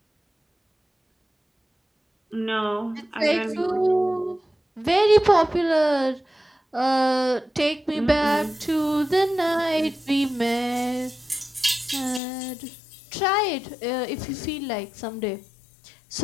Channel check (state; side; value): drops out; right; at 12.2 s